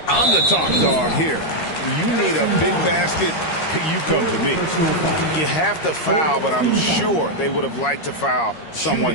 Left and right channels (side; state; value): right; late; 13 ms